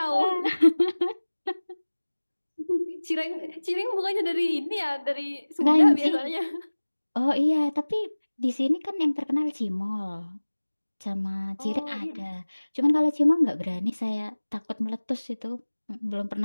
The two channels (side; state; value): both; inverted; correlation -1.00